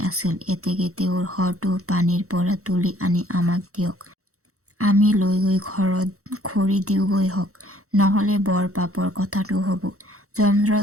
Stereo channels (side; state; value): left; late; 0.64 ms